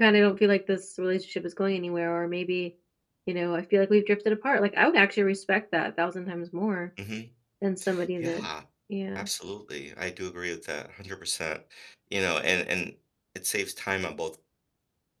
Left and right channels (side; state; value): both; identical; correlation 1.00